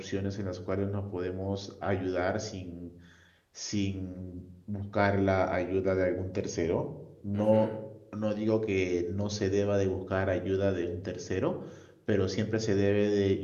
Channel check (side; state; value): both; identical; correlation 1.00